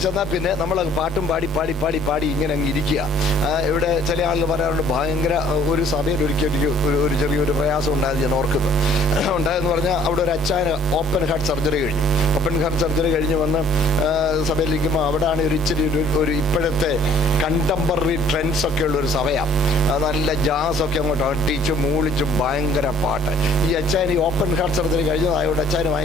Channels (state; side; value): normal; both; correlation 0.57